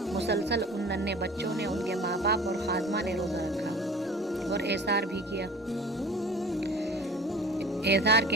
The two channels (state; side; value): normal; both; correlation 0.43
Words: مسلسل ان ننھے بچوں نے، ان کے ماں باپ اور خادمہ نے روزہ رکھا اور ایثار بھی کیا۔ ایثار